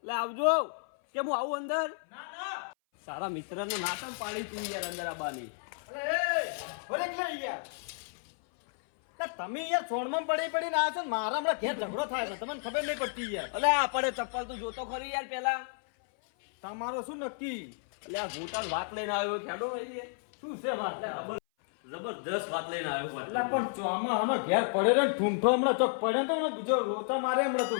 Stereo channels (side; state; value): right; silent; 56 dB below the other